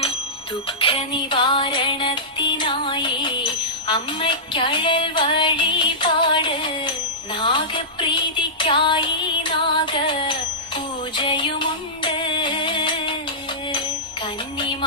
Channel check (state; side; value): normal; both; correlation -0.15